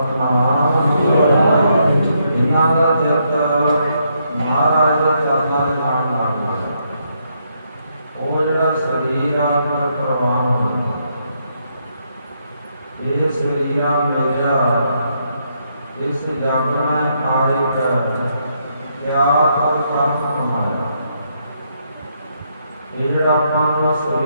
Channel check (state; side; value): inverted; both; correlation -0.76